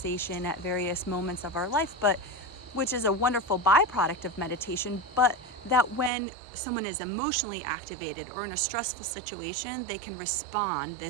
at various moments of our life, but which is a wonderful byproduct of meditation, but that when someone is emotionally activated or in a stressful situation, they can respond,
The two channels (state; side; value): drops out; left; at 6.1 s